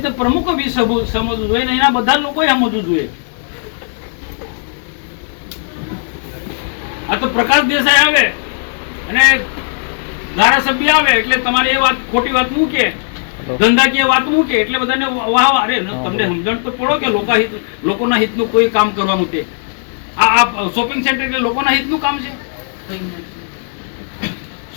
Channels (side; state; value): right; silent; 69 dB below the other